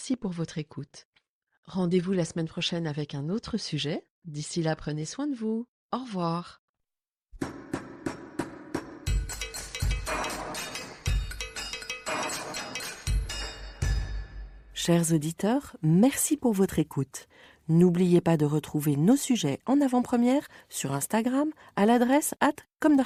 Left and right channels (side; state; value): both; identical; correlation 1.00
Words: pour votre écoute. Rendez-vous la semaine prochaine avec un autre sujet. D'ici là, prenez soin de vous. Au revoir. Chers auditeurs, merci pour votre écoute. N'oubliez pas de retrouver nos sujets en avant-première sur Instagram à l'adresse